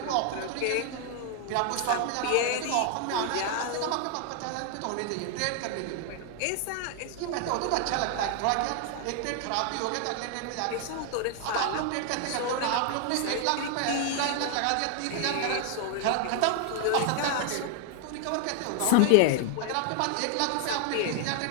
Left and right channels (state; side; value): different; both; correlation 0.00